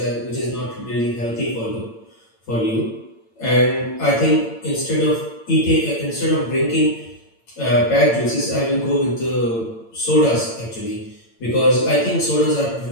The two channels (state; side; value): late; right; 8.8 ms